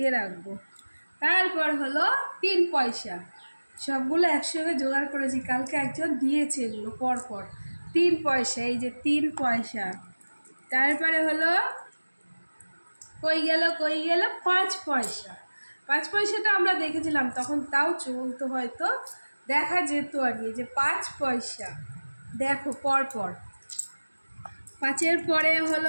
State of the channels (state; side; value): inverted; both; correlation -1.00